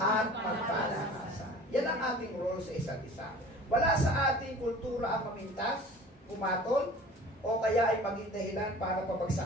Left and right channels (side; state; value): both; normal; correlation 0.44